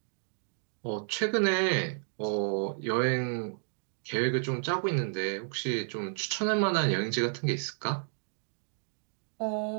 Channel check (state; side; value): silent; left; digital silence